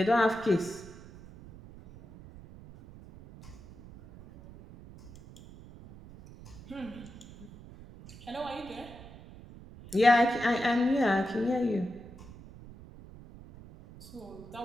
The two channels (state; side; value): noise; right; rumble, 18 dB below the sound